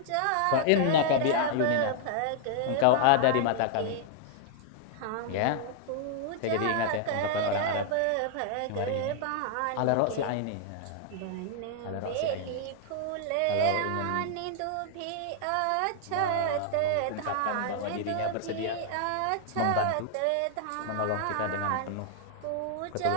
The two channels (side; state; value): both; different; correlation -0.01